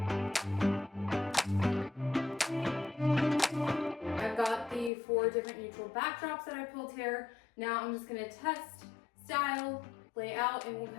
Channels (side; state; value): right; drops out; at 4.9 s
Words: I've got the 4 different neutral backdrops that I pulled here. Now I'm just gonna test, style, lay out, and we'll